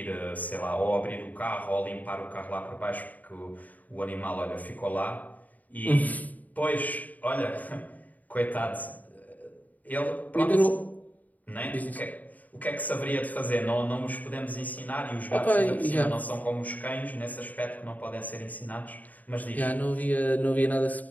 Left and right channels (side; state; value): right; late; 0.077 ms